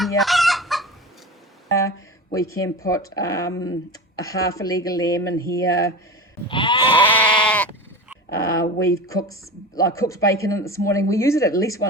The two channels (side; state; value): both; normal; correlation 0.29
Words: We can put a half a leg of lamb in here. We've cooked bacon in it this morning. We use it at least